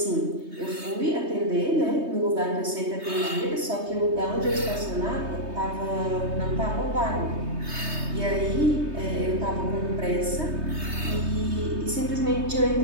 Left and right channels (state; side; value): late; left; 3.2 ms